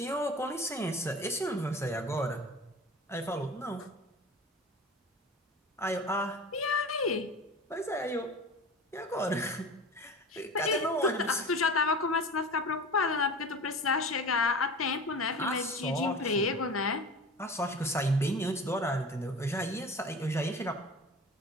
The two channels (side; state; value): both; normal; correlation 0.35